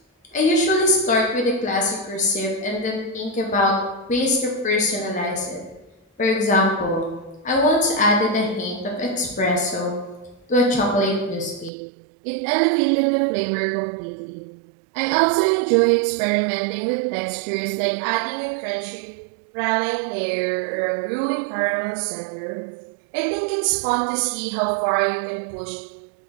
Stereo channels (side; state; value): left; drops out; at 11.7 s